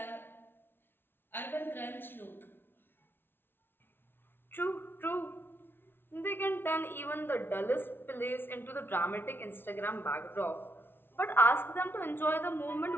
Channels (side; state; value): right; late; 0.11 ms